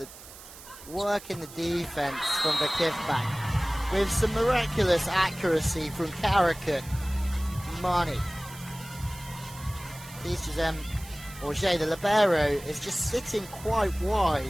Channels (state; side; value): noise; right; hiss, 17 dB below the sound